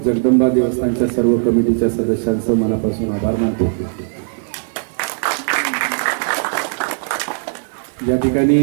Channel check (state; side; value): silent; left; 65 dB below the other